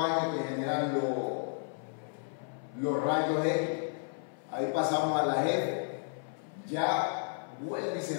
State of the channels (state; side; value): silent; right; 56 dB below the other